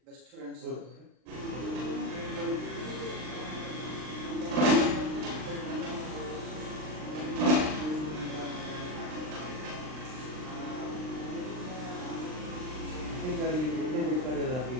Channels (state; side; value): late; left; 39 ms